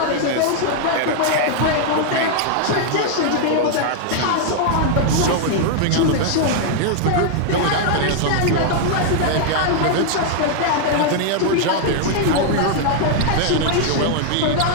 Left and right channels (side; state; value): both; different; correlation 0.00